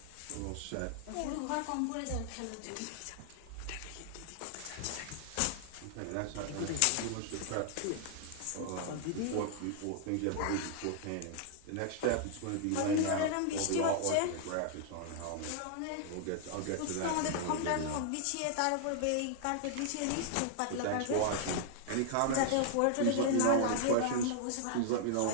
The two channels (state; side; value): different; both; correlation -0.01